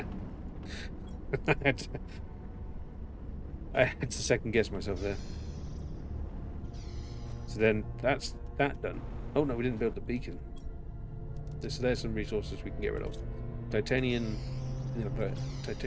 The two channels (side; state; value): both; identical; correlation 1.00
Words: I had to second guess myself there. So then that's that done. Oh no, we didn't build the beacon. So there's some resources we can get rid of. Titanium,